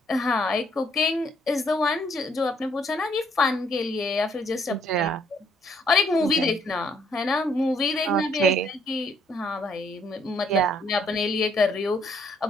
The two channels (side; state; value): both; normal; correlation 0.68